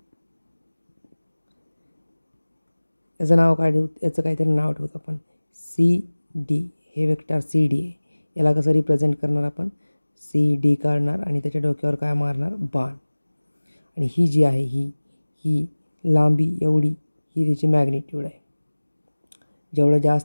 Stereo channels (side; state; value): both; inverted; correlation -1.00